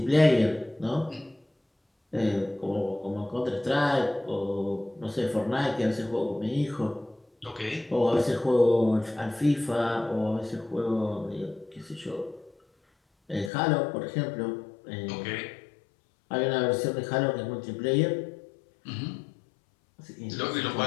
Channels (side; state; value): right; drops out; at 13.5 s